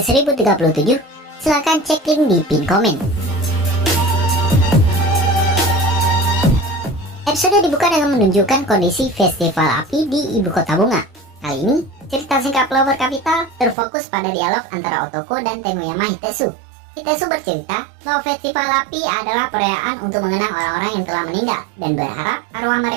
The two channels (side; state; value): left; drops out; at 13.8 s